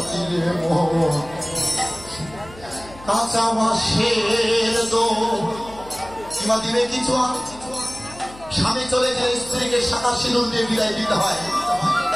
মন, কাঁচা বাঁশের দো। কিংবা দিবে কিছু আর স্বামী চলে গেলে স্ত্রীকে শাখা সিঁদুর দিয়ে বিদায় দিতে হয়,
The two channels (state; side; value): noise; left; hum, 19 dB below the sound